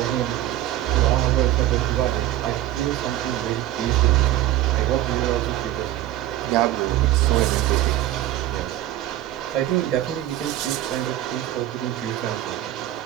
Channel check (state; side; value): quieter; left; 13.9 dB